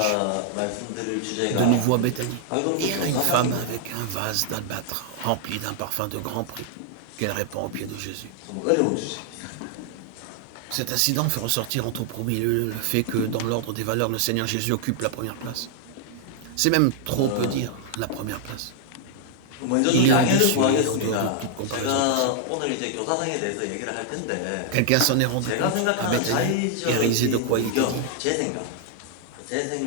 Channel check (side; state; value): both; different; correlation 0.00